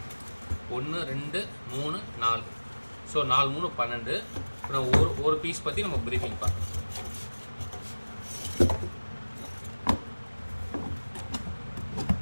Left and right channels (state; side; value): inverted; both; correlation -1.00